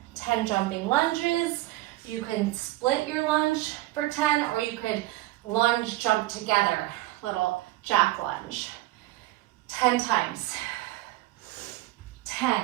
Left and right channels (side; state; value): left; quieter; 17.6 dB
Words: 10 jumping lunges. You can split your lunge for 10, or you could lunge, jump together. Little jack lunge. 10 times. 10,